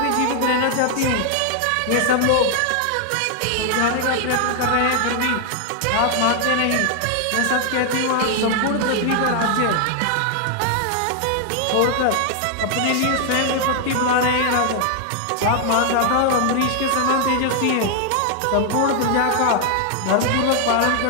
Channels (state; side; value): different; both; correlation 0.00